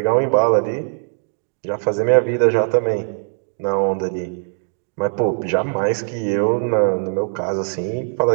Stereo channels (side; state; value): left; silent; 58 dB below the other